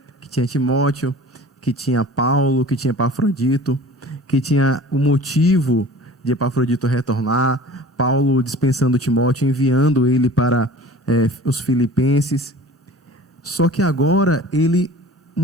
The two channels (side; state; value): both; normal; correlation 0.43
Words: que tinha Timóteo, que tinha Paulo, que tinha Epafrodito, que tinha o motivo de Epafrodito retornar, Paulo dispensando Timóteo, enviando ele para os Filipenses. Só que agora ele